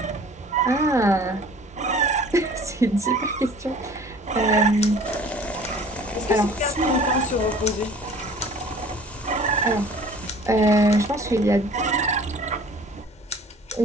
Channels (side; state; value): both; normal; correlation 0.48